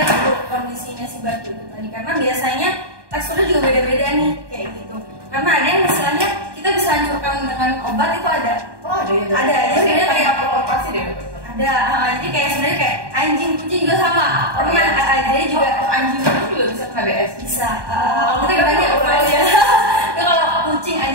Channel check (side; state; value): left; late; 1.2 ms